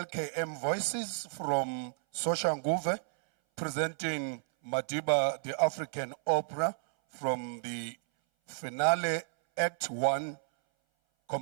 Voices from Soshanguve presenting Madiba, the African opera from the finale Act 1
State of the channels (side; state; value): left; silent; 56 dB below the other